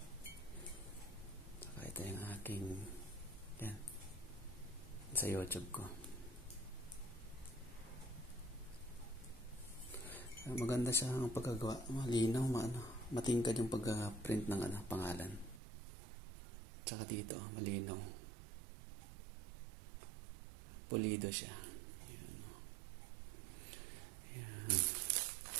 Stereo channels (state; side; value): drops out; left; at 15.6 s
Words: Saka ito yung aking yan sa YouTube ko. Maganda siya ang pagkagawa. Malinaw, matingkad yung pag-print ng pangalan. Saka dito, malinaw. Pulido siya. Ayan. Ayan.